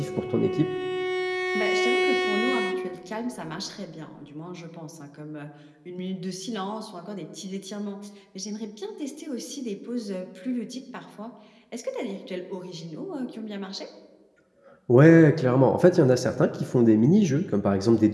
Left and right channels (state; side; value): identical; both; correlation 1.00